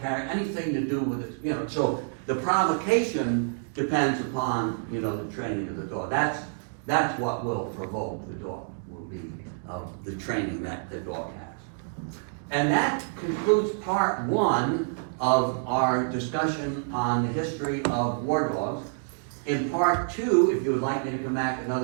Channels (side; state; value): left; silent; digital silence